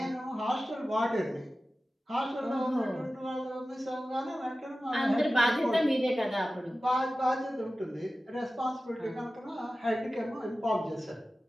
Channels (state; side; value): normal; both; correlation 0.95